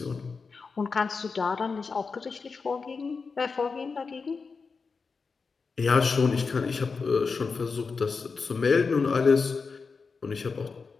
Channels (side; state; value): right; quieter; 4.8 dB